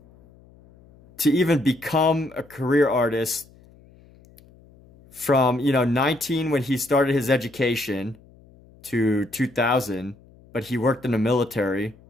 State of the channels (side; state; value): left; noise; hum, 26 dB below the sound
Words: to even become a career artist from, 19 when he started his education to 2000, but he worked in the military.